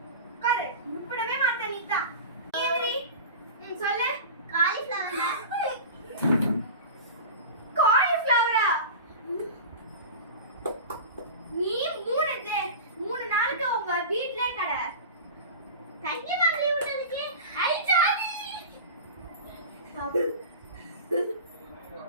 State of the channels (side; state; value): both; inverted; correlation -0.31